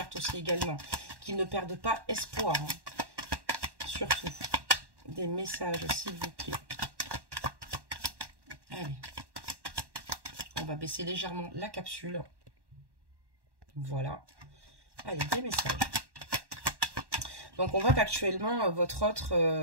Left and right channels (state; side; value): late; left; 1.1 ms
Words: aussi également. Qu'il ne perde pas espoir. Surtout. Des messages, s'il vous plaît. Allez. On va baisser légèrement la capsule. Voilà. Allez, des messages. Donc, on voit qu'actuellement, votre autre